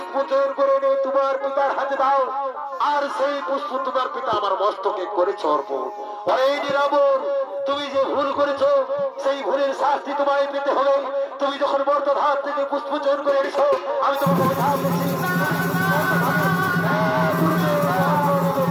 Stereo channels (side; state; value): both; identical; correlation 1.00